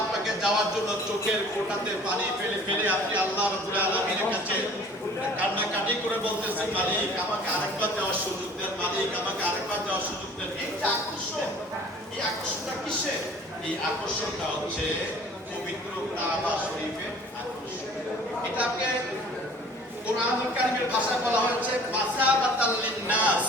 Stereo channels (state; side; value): normal; both; correlation 0.49